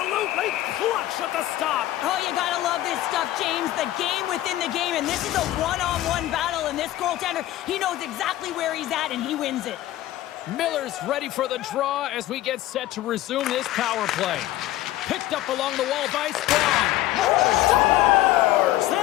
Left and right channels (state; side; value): quieter; right; 14.9 dB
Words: clutch at the stop. Oh, you gotta love this stuff, James. The game within the game, and this is a one-on-one battle, and this goaltender, he knows exactly where he's at, and he wins it. Miller's ready for the draw as we get set to resume this power play. Picked up along the wall by Sprong. Scores!